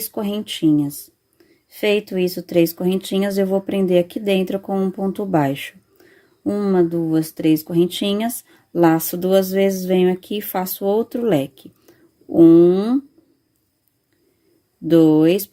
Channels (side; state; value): both; identical; correlation 1.00